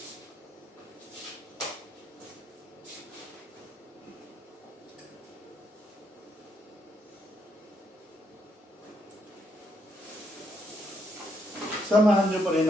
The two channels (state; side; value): normal; both; correlation 0.76